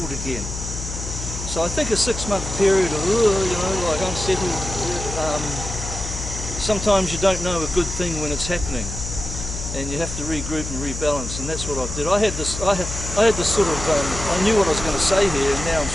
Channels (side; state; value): left; noise; hum, 7 dB below the sound